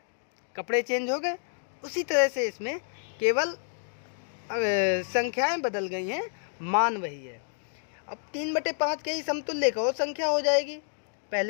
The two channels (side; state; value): right; silent; digital silence